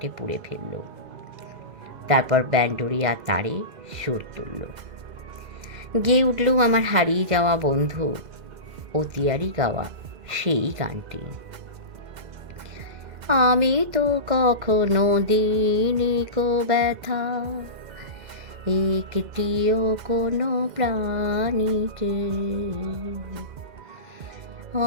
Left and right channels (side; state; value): left; late; 2.0 ms